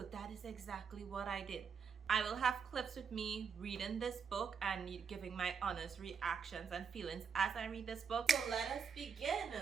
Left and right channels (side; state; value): left; quieter; 6.5 dB